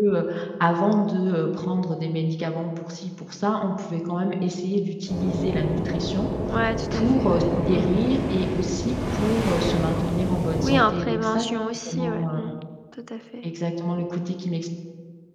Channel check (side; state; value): both; identical; correlation 1.00